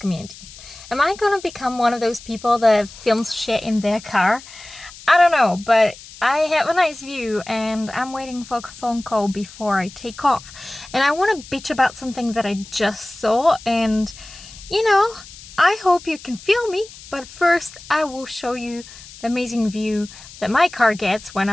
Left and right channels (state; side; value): noise; left; hiss, 18 dB below the sound